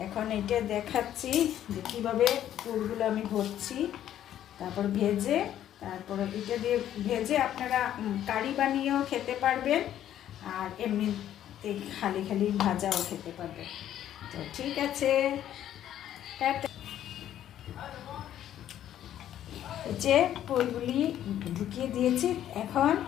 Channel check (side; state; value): right; quieter; 11.3 dB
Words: এখন এটা দেখাচ্ছি যে কীভাবে পুরগুলো আমি ভরছি। তারপর ভেজে, তারপর এটা দিয়ে ভেজে আপনারা কারি বানিয়েও খেতে পারবেন, আর এমনিতে খালি খালি ভাজাও খেতে পারবেন। তো ঠিক আছে, যে পুরগুলি ঢুকিয়ে দিয়েছি। এখন